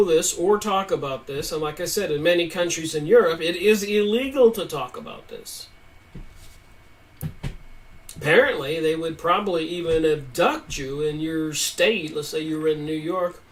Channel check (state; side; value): identical; both; correlation 1.00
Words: this or talk about this, and like I said, in many countries in Europe, it is illegal to talk about this. Apparently, they would probably even abduct you in your state, let's say you were in New York,